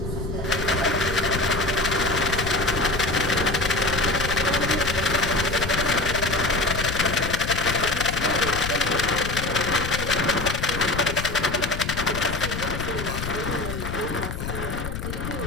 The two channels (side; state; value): left; noise; rumble, 5 dB below the sound